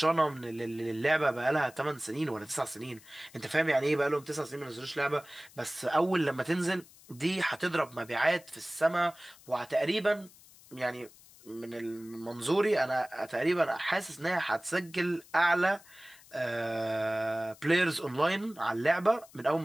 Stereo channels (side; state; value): left; noise; hiss, 23 dB below the sound